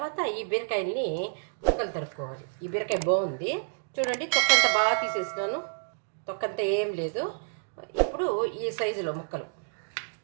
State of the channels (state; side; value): silent; left; digital silence